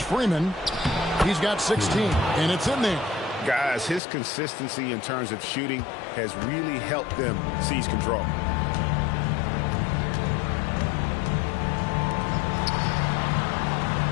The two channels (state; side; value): drops out; right; at 4.0 s